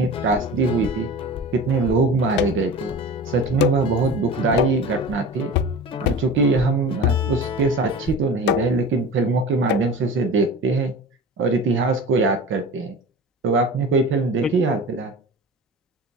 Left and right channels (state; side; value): normal; both; correlation 0.34